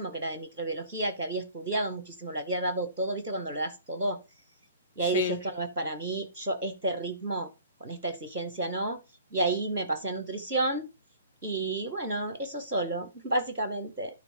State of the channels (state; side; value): inverted; both; correlation -0.49